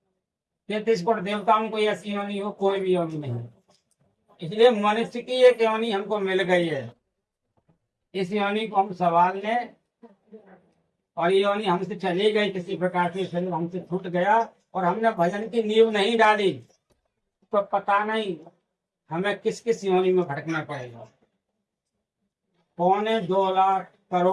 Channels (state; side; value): identical; both; correlation 1.00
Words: 33 कोटि देवताओं को ऐसी योनि हो? कोई भी योनि नहीं। इसलिए मनुष्य की एक योनि हमको मिल गई है, इस योनि को हम संभाल लें। और ये योनि हमसे चली गई किसी प्रकार से, शरीर हमसे छूट गया और हमने भजन की नींव नहीं डाली, तो पता नहीं हमें किस किस योनि में भटकना पड़ेगा। 2.25 लाख